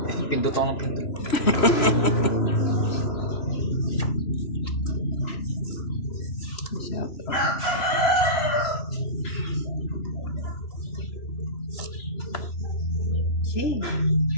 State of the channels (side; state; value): right; late; 3.0 ms